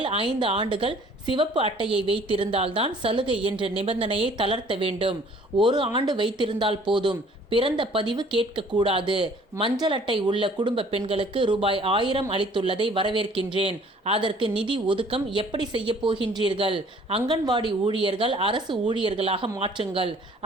5 ஆண்டுகள் சிவப்பு அட்டையை வைத்திருந்தால்தான் சலுகை என்ற நிபந்தனையை தளர்த்த வேண்டும். 1 ஆண்டு வைத்திருந்தால் போதும். பிறந்த பதிவு கேட்கக்கூடாது. மஞ்சள் அட்டை உள்ள குடும்ப பெண்களுக்கு ரூபாய் 1000 அளித்துள்ளதை வரவேற்கின்றேன். அதற்கு நிதி ஒதுக்கம் எப்படி செய்ய போகின்றீர்கள்? அங்கன்வாடி ஊழியர்கள் அரசு ஊழியர்களாக மாற்றுங்கள்.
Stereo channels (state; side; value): normal; both; correlation 0.55